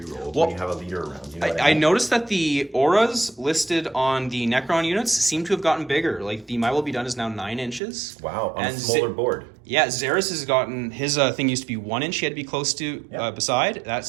when you have a leader around. You know what I mean? noticed that the auras listed on the Necron units seem to have gotten bigger. Like the My Will Be Done is now 9 inches. Wow, on a And smaller board. Yeah, Xeris has gotten his thing used to be 1 inch. He had to be close to beside.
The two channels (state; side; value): drops out; left; at 7.8 s